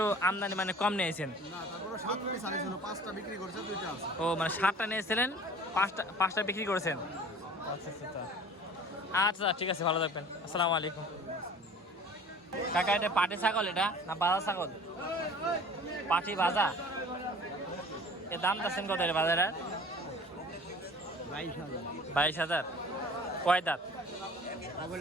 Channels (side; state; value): both; normal; correlation 0.45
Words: আমদানি মানে কম নিয়েছেন। ও মানে 7টা নিয়েছিলেন, 5টা বিক্রি করেছেন। আচ্ছা আচ্ছা আচ্ছা, ঠিক আছে, ভালো থাকবেন। আসসালামু আলাইকুম। কাকা এটা পাটি ছাগল এটা না বাজা ছাগল? পাটি ভাজা। এর দাম যাচ্ছেন কত এটা বাজারে? 22,000। কয় দাঁত?